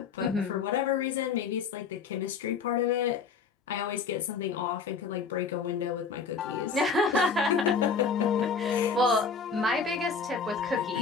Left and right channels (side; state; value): right; quieter; 5.3 dB